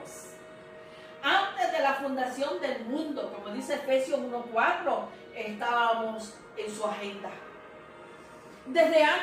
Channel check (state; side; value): identical; both; correlation 1.00